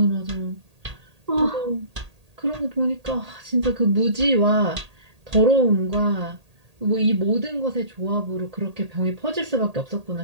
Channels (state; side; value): late; left; 1.8 ms